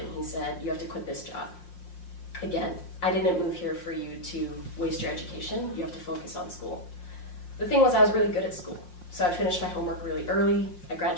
he said, you have to quit this job. Again, I didn't move here for you to waste your education. You have to focus on school. The thing was, I was really good at school. So I finished my homework really early. I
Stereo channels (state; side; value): late; right; 5.6 ms